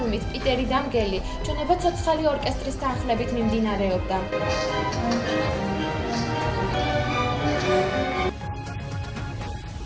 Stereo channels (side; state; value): both; identical; correlation 1.00